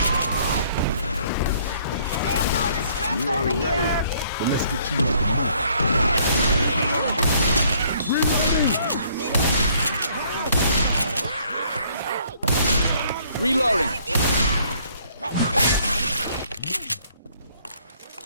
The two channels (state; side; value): inverted; both; correlation -0.62